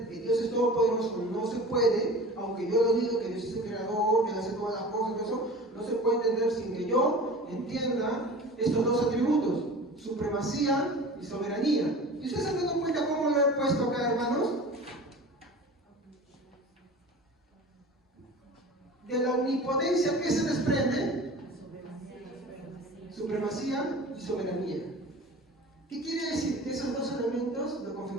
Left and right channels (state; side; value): normal; both; correlation 0.38